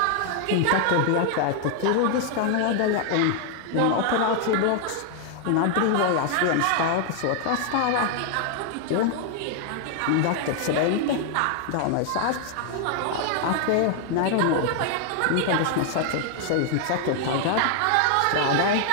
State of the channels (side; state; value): both; different; correlation 0.00